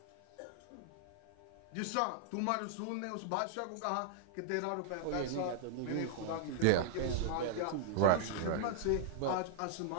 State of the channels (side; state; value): both; different; correlation -0.01